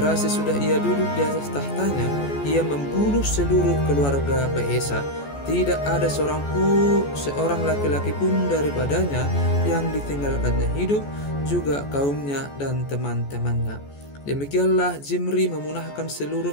sesudah ia duduk di atas tahtanya, ia membunuh seluruh keluarga Baesa. Tidak ada seorang laki-laki pun daripadanya yang ditinggalkannya hidup, juga kaumnya dan teman-temannya. Demikianlah Zimri memunahkan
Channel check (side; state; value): right; late; 14 ms